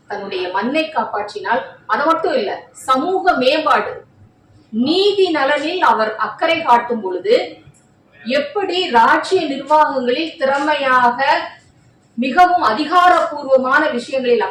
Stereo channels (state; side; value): identical; both; correlation 1.00